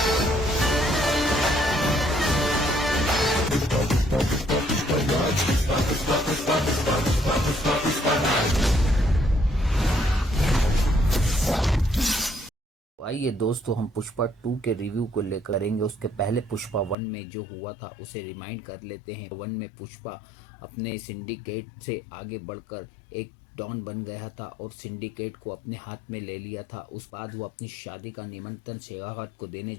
आइए दोस्तों, हम पुष्पा 2 के रिव्यू को लेकर करेंगे। उसके पहले पुष्पा 1 में जो हुआ था उसे रिमाइंड कर लेते हैं। 1 में पुष्पा अपने सिंडिकेट से आगे बढ़कर एक डॉन बन गया था और सिंडिकेट को अपने हाथ में ले लिया था। उस बाद वो अपनी शादी का निमंत्रण शेखावत को देने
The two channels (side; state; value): right; drops out; at 16.9 s